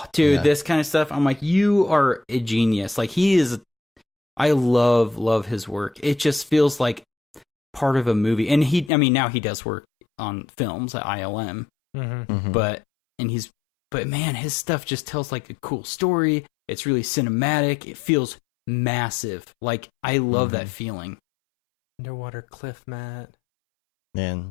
dude, Yeah. this kind of stuff. I'm like, you are a genius. Like he is. I love his work. It just feels like part of a movie. And now he does work on films at ILM, Mm-hmm. Mhm. but man, his stuff just tells like a cool story. It's really cinematic. It feels massive. Like I love that feeling. Underwater cliff mat.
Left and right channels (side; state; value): right; drops out; at 8.9 s